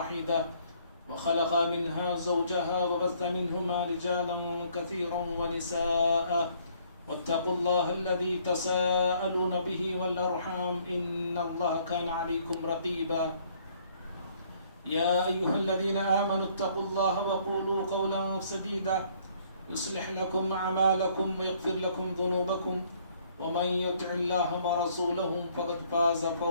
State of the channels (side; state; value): both; inverted; correlation -0.63